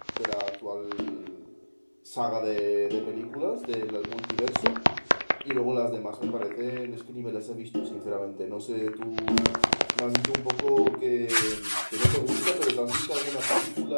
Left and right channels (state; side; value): inverted; both; correlation -1.00